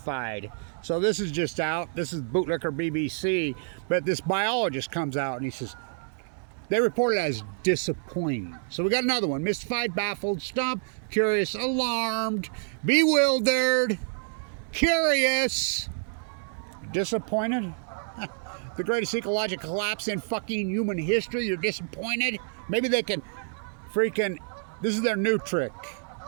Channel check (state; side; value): silent; left; digital silence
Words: So this is just out. This is Bootlicker BBC, but this biologist comes out and he says they report it as disappointing. So we got another one: mystified, baffled, stumped, curious, alarmed, bewildered, curious, disappointed. The greatest ecological collapse in fucking human history. You're disappointed? Maybe they can freaking, this is their new trick.